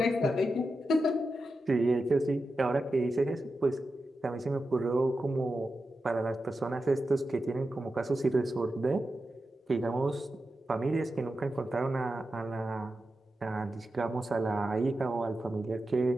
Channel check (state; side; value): normal; both; correlation 0.90